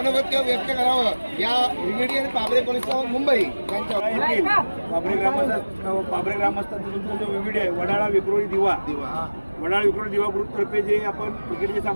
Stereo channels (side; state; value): both; inverted; correlation -1.00